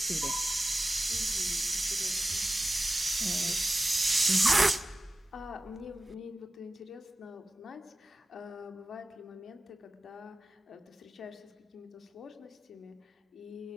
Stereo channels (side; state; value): both; normal; correlation 0.96